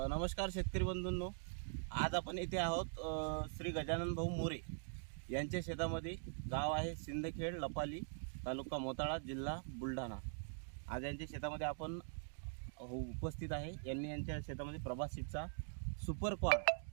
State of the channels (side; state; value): left; silent; digital silence